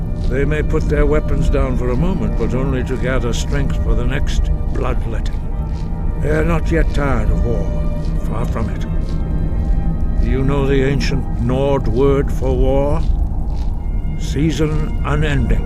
They may put their weapons down for a moment, but only to gather strength for the next bloodletting. They are not yet tired of war. Far from it. Do you know the ancient Nord word for war? Season unending.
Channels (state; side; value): identical; both; correlation 1.00